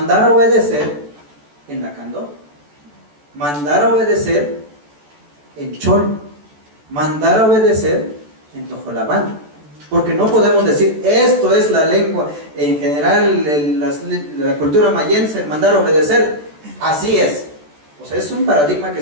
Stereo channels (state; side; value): late; left; 14 ms